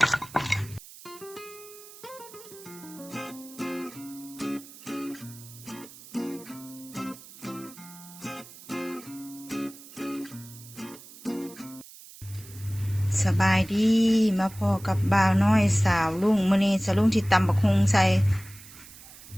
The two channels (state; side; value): noise; right; hiss, 19 dB below the sound